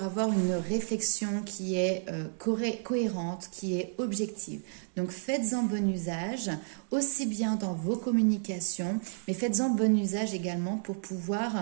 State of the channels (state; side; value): silent; left; digital silence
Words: avoir une réflexion qui est cohérente, qui est objective. Donc faites-en bon usage, aussi bien dans vos communications, mais faites-en bon usage également pour